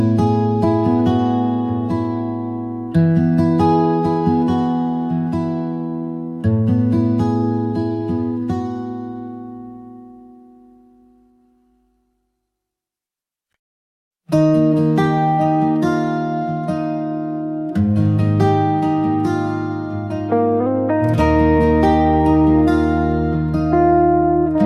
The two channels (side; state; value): both; identical; correlation 1.00